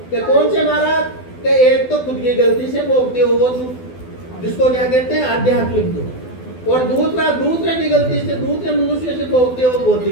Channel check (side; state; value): right; late; 12 ms